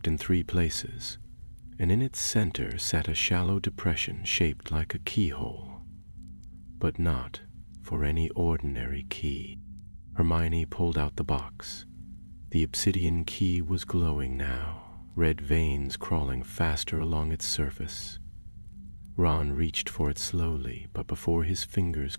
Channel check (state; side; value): inverted; both; correlation -1.00